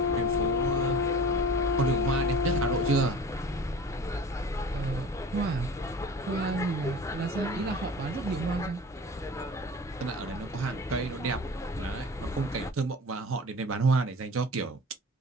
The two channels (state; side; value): normal; both; correlation 0.39